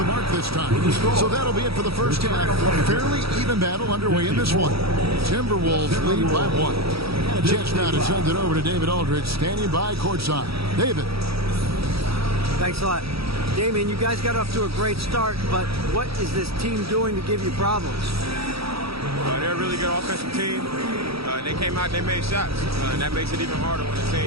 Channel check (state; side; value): late; left; 0.77 ms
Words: mark this time. So that'll be it for the first half. Fairly even battle underway in this one. Timberwolves lead by 1. And a chance now to send it over to David Aldridge, standing by courtside. David. Thanks a lot. Damian, you guys got off to a great start, but what is this team doing to give you problems? They're a really good offensive team. They came out, they made shots, and that makes it even harder when the